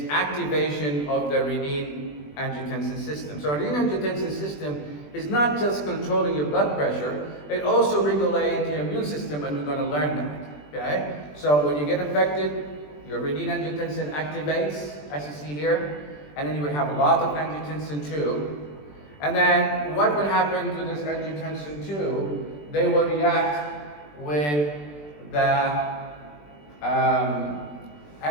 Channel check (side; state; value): right; late; 20 ms